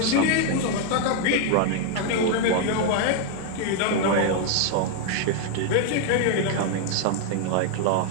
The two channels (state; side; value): different; both; correlation 0.00